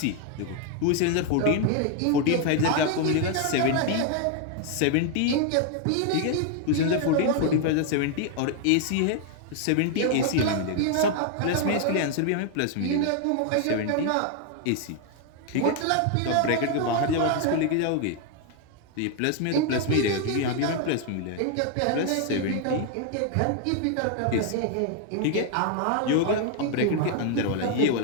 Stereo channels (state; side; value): different; both; correlation 0.00